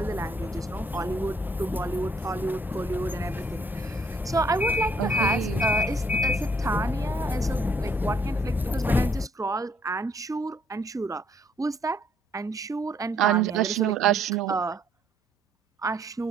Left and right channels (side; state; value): both; normal; correlation 0.65